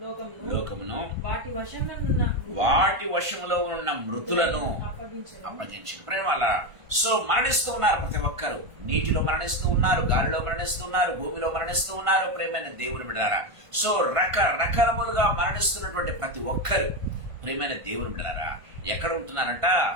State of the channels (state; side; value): late; left; 1.5 ms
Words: లోకమును లోకమును వాటి వశంలో ఉన్న వాటి వశములో ఉన్న మృతులను అప్పగించెను. అప్పగించిన ప్రేమ వల్ల సో మరణిస్తూ ఉన్నారు ప్రతి ఒక్కరు. నీటిలో మరణిస్తూ ఉన్నారు, గాలిలో మరణిస్తూ ఉన్నారు, భూమిలో మరణిస్తూ ఉన్నారు ప్రేమైన దేవుని బిడ్డలారా. సో రకరకాలుగా మరణిస్తున్నటువంటి ప్రతి ఒక్కరు ప్రేమైన దేవుని బిడ్డలారా ఎక్కడ ఉంటున్నారంట?